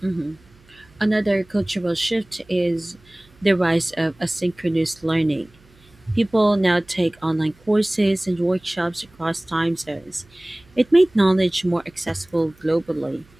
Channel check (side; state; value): right; noise; hum, 29 dB below the sound